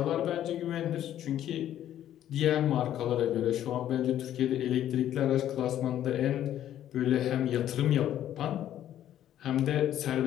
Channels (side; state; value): right; quieter; 11.5 dB